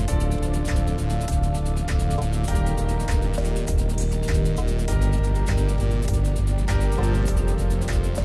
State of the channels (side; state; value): both; identical; correlation 1.00